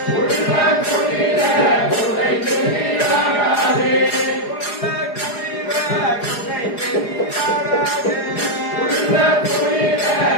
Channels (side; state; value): right; late; 4.8 ms